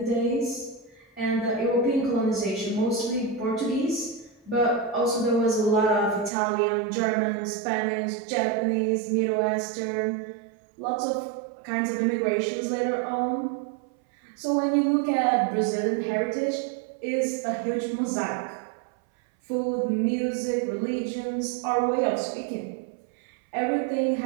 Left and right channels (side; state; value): left; drops out; at 6.3 s